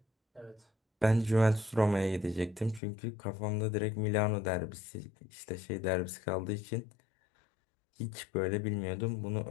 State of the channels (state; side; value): drops out; right; at 2.8 s